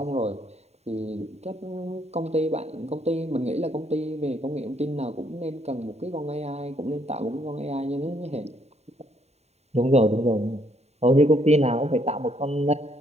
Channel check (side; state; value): left; late; 0.31 ms